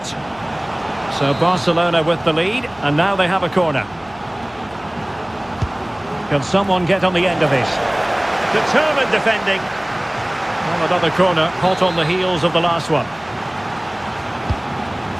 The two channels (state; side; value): noise; left; hum, 25 dB below the sound